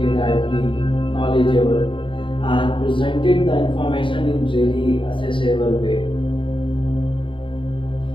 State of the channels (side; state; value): right; late; 0.25 ms